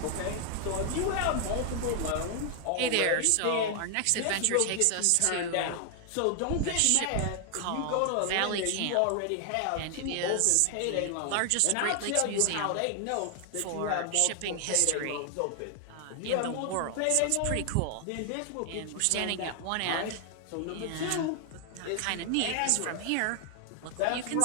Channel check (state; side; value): different; both; correlation 0.00